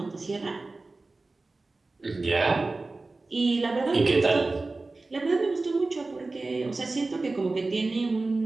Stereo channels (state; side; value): quieter; left; 3.4 dB